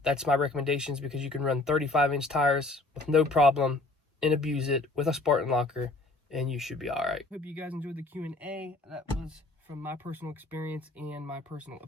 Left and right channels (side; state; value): right; quieter; 3.1 dB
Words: my recommendations, because you can run 35-inch tires with no problem and abuse it with a Spartan locker, and you should be all right. Hope you guys enjoyed the Q&A. That was from my personal experience and my personal